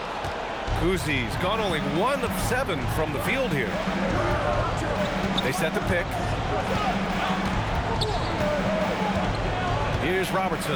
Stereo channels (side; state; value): both; identical; correlation 1.00